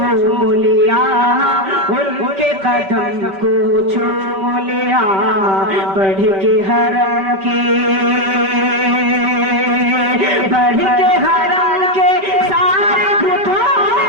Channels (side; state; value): left; late; 5.2 ms